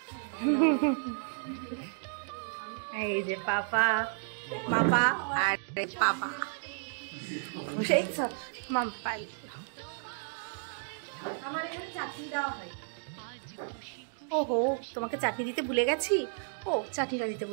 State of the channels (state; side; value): silent; left; digital silence